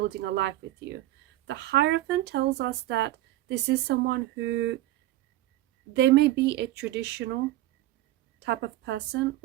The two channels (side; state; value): left; quieter; 15.6 dB